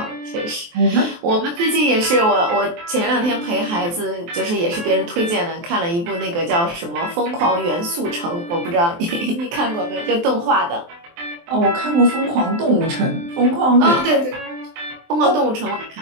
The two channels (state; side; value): late; left; 23 ms